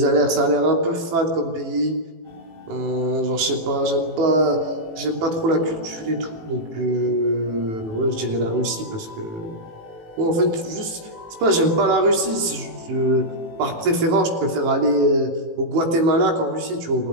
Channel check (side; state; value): left; late; 18 ms